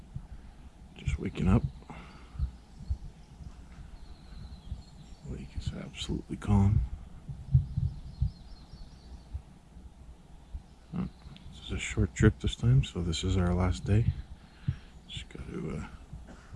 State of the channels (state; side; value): identical; both; correlation 1.00